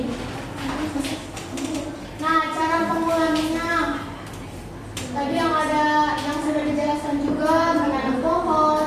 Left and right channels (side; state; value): both; identical; correlation 1.00